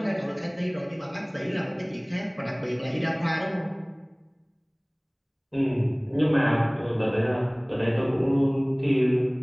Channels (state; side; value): identical; both; correlation 1.00